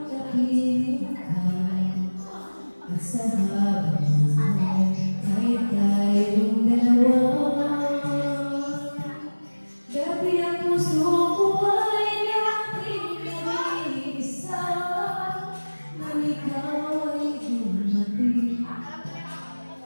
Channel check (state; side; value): inverted; both; correlation -1.00